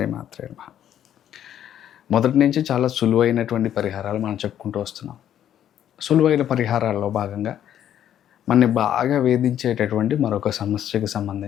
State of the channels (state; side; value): quieter; right; 10.5 dB